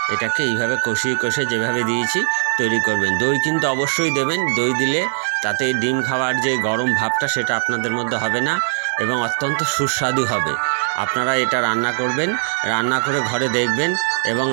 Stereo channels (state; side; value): silent; left; digital silence